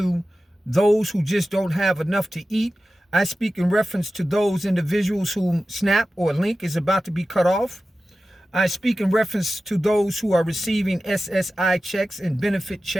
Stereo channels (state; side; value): normal; both; correlation 0.94